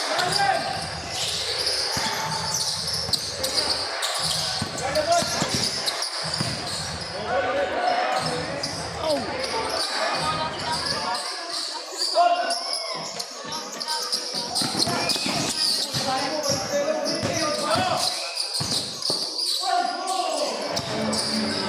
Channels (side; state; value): both; identical; correlation 1.00